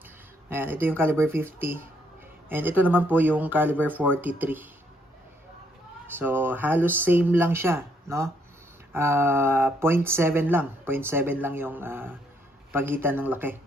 Ayan, ito yung caliber 50. And ito naman po yung caliber 43. So halos same lang siya, no? 0.7 lang. 0.7 lang yung pagitan ng laki.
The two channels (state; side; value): normal; both; correlation 0.71